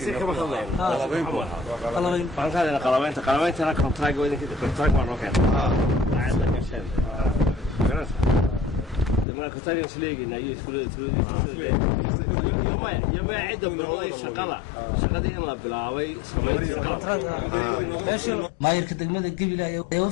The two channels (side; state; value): right; drops out; at 9.2 s